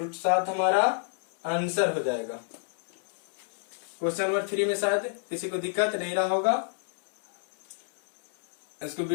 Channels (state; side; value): silent; right; digital silence